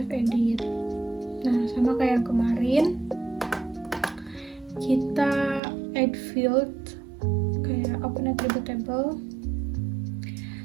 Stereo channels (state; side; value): drops out; left; at 5.6 s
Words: edit. Nah, sama kayak yang kemarin, kita add field, kayak open attribute table,